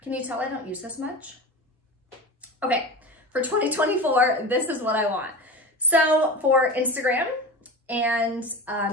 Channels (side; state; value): both; normal; correlation 0.29